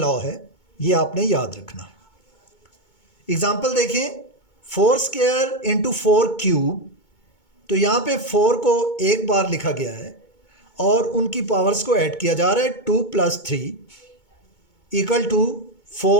है, ये आपने याद रखना है। एग्जाम्पल देखें, 4 स्क्वायर इंटू 4 क्यूब। तो यहाँ पे 4 को एक बार लिखा गया है और उनकी पावर्स को ऐड किया जा रहा है। 2 + 3 इक्वल टू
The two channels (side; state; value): right; late; 2.2 ms